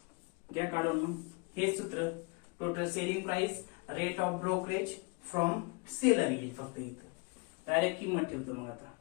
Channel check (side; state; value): right; quieter; 30.3 dB